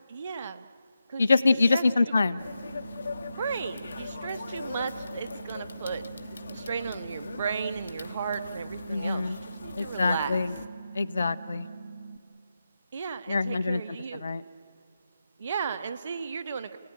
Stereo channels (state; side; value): inverted; both; correlation -0.87